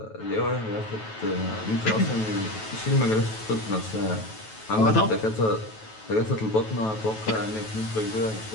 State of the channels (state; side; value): late; right; 9.2 ms